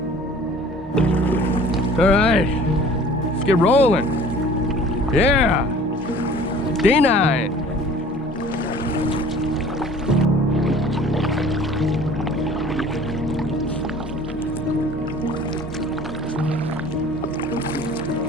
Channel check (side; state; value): both; normal; correlation 0.48